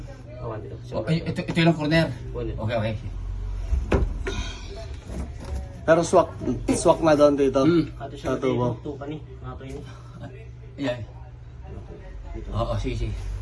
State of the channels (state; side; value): identical; both; correlation 1.00